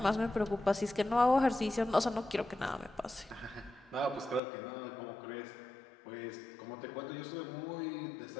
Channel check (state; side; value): drops out; right; at 4.4 s